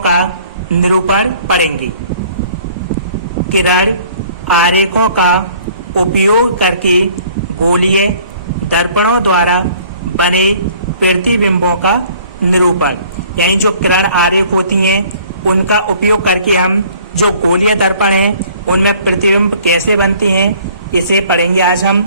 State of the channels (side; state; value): both; inverted; correlation -0.55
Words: निरूपण पढ़ेंगे। किरण आरेखों का उपयोग करके गोलीय दर्पणों द्वारा बने प्रतिबिंबों का निरूपण, यानी जो किरण आरेख होती हैं उनका उपयोग करके हम जो गोलीय दर्पण हैं उनमें प्रतिबिंब कैसे बनते हैं इसे पढ़ेंगे आज हम।